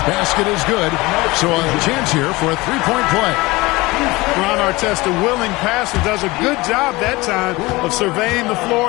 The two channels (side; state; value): right; quieter; 21.7 dB